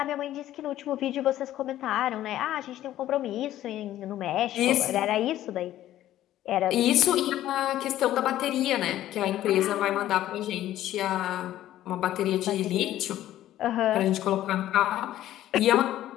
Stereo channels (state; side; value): quieter; right; 13.3 dB